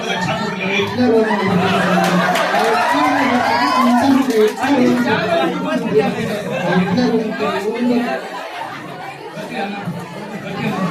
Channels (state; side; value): identical; both; correlation 1.00